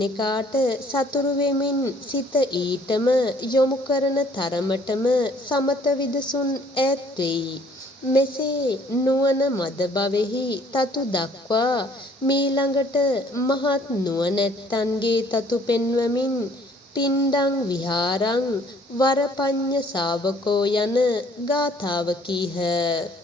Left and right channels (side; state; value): both; normal; correlation 0.59